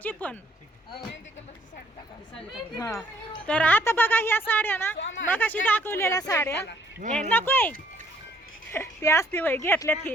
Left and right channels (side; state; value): both; normal; correlation 0.63